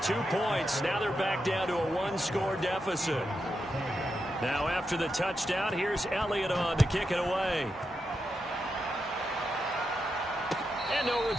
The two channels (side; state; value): both; normal; correlation 0.86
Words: points, now they're back down to a 1-score deficit. Now after the touchdown, here's Elliott on to kick it away. And no